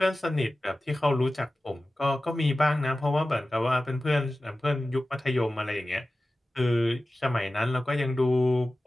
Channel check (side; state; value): both; normal; correlation 0.95